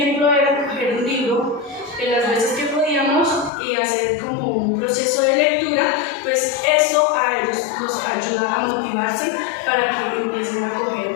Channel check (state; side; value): drops out; right; at 3.5 s